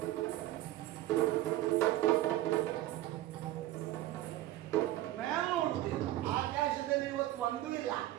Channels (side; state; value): left; quieter; 15.1 dB